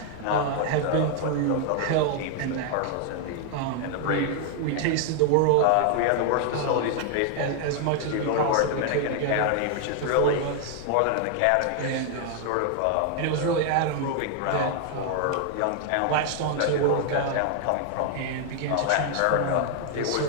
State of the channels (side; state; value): both; different; correlation 0.00